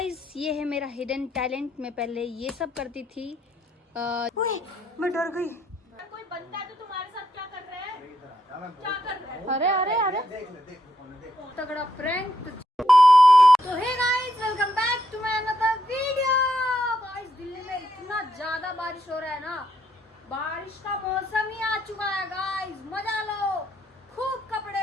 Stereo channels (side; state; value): both; normal; correlation 0.77